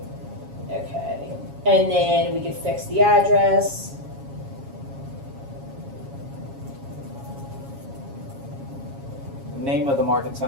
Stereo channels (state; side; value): late; left; 7.3 ms